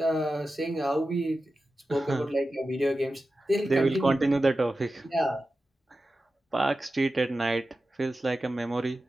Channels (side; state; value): both; normal; correlation 0.93